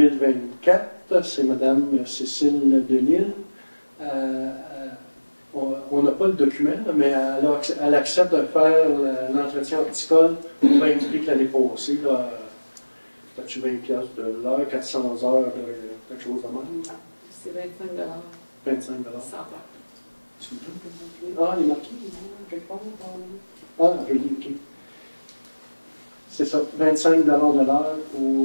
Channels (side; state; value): both; inverted; correlation -1.00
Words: c'est Mme Cécile Delisle. On n'a pas le document, mais elle accepte de faire l'entretien horticole au même prix que l'année passée. As-tu 20$ de l'heure, 400 heures, quelque chose de même? C'est 25$. 25 100 $. Ah, il est marqué quelque part. Ah, je l'ai, OK. C'est ça, 25 $ de l'heure